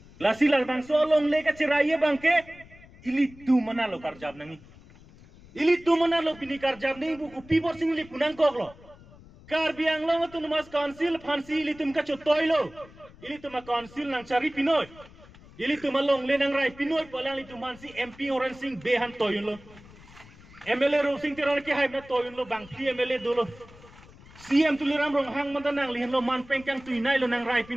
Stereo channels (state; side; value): noise; left; rumble, 22 dB below the sound